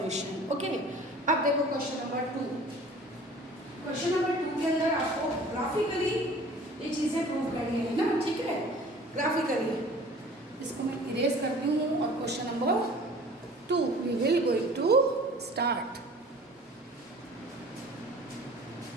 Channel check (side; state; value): both; normal; correlation 0.46